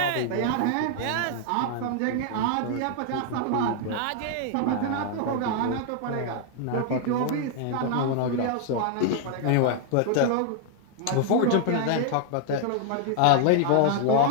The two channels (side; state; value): both; different; correlation 0.00